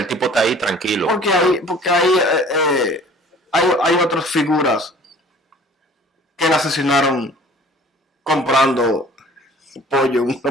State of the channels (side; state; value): both; normal; correlation 0.49